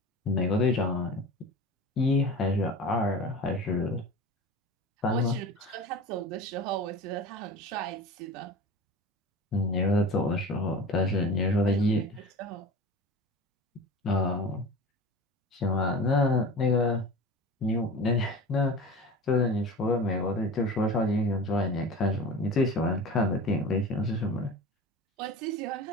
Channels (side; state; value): both; normal; correlation 0.34